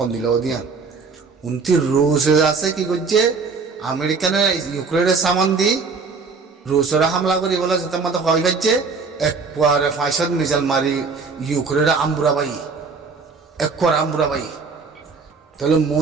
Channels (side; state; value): left; quieter; 4.7 dB